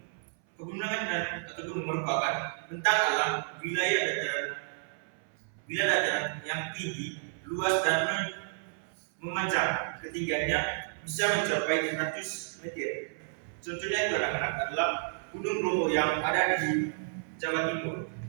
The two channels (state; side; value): silent; left; 57 dB below the other